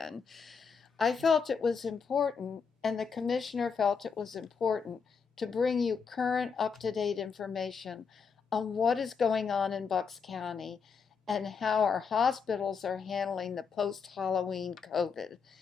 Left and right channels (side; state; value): right; quieter; 5.8 dB